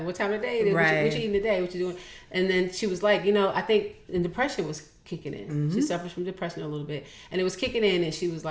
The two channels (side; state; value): both; identical; correlation 1.00